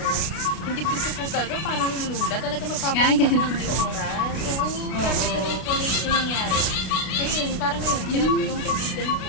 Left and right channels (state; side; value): late; right; 32 ms